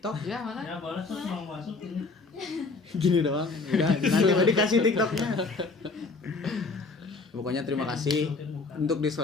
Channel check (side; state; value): right; quieter; 3.9 dB